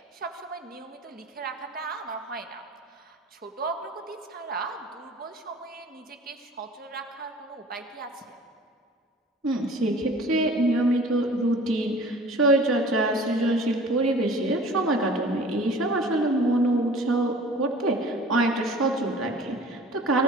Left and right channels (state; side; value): normal; both; correlation 0.45